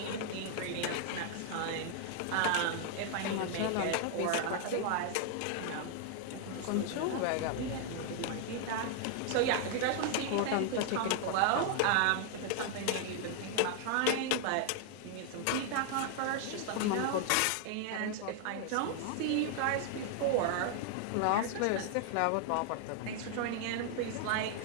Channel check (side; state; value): both; different; correlation 0.00